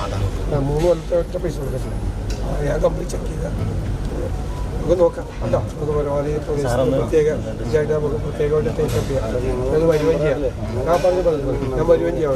3 കൊല്ലത്തെ ഒറ്റ പൈസ കൊടുത്തിട്ടില്ല. ഞാൻ കംപ്ലീറ്റ് ചെക്ക് ചെയ്താണ്. നമുക്ക് നോക്കാം. അല്ല നമുക്ക് പരമാവധി പ്രത്യേകമായിട്ട് നമുക്ക് പ്രത്യേകമായിട്ട് ടേക്കപ്പ് ചെയ്യാം. ഞങ്ങൾ വരുകയും ചെയ്യാം. ഞാൻ വരുകയും ചെയ്യാം.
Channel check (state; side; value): identical; both; correlation 1.00